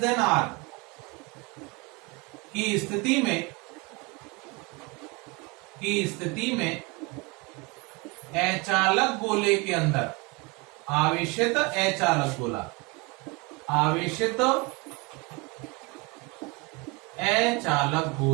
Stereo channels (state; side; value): quieter; left; 27.6 dB